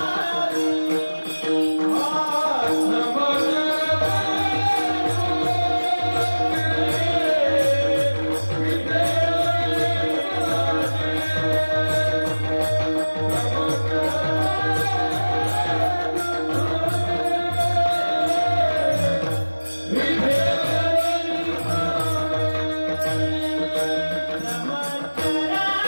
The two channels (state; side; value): inverted; both; correlation -1.00